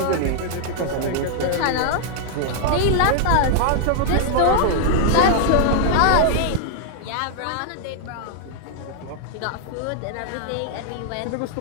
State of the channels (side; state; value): both; different; correlation -0.01